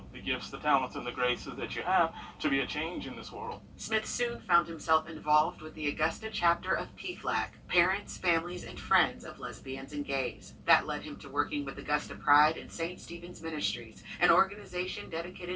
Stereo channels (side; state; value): both; identical; correlation 1.00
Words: gifts, the talents, and the graces that you have to be a change in this world. Smith soon found himself involved with the Augusta chapter of PFLAG, Parents, Families, and Friends of Lesbians and Gays. That led him to working with Augusta Pride and St. Stephen's Ministries, an organization